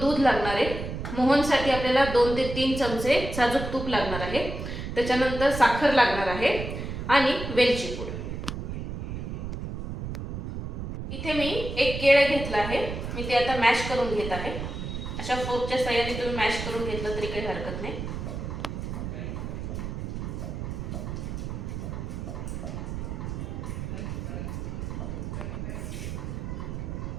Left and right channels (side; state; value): right; noise; rumble, 5 dB below the sound